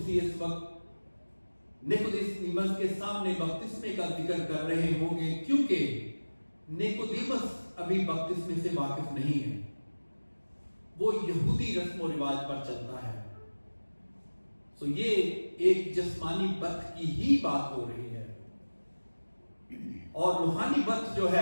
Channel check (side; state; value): both; inverted; correlation -1.00